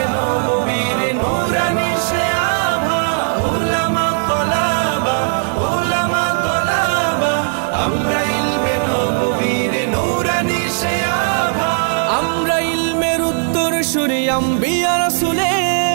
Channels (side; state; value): left; silent; digital silence